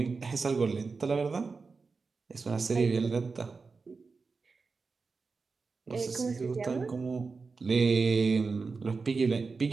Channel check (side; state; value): left; quieter; 4.5 dB